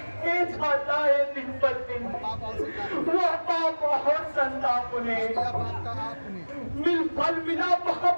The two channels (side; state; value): both; inverted; correlation -1.00